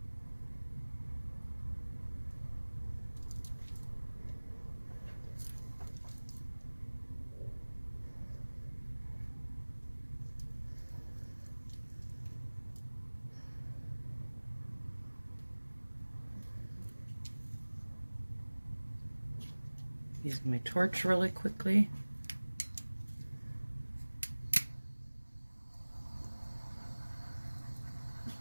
Use my torch really quickly.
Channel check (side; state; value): both; inverted; correlation -1.00